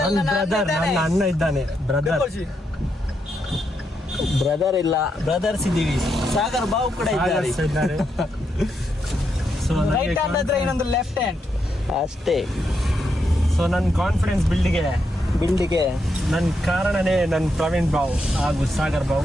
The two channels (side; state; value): both; normal; correlation 0.81